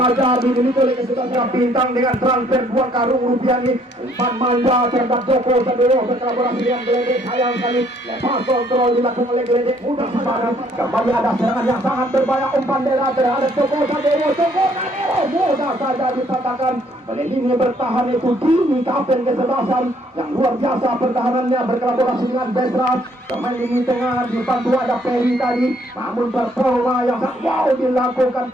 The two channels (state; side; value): normal; both; correlation 0.65